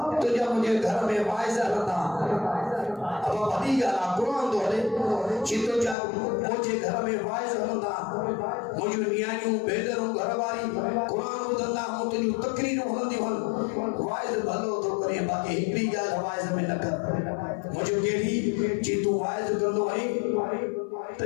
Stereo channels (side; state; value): right; drops out; at 6.0 s